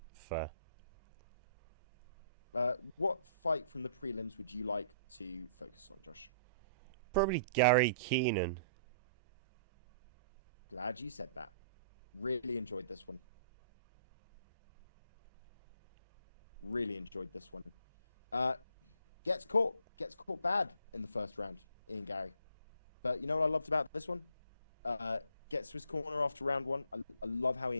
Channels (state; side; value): inverted; both; correlation -0.59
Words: Fair. What fight from the prelims would you like to focus on, Josh? Probably Gary Keenan Glad you said that. Really enjoyed this one. Really enjoyed this one. Uh, gets caught bad in the first round, Ian Gary. But you know what I loved about this one? Gets to his corner after round one. I love how